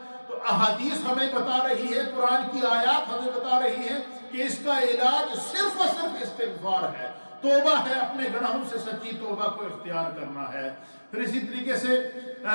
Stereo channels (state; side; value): inverted; both; correlation -1.00